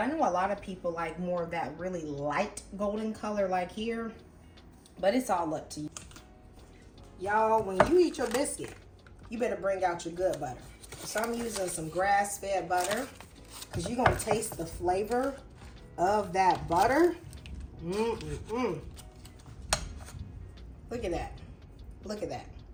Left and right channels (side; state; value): both; identical; correlation 1.00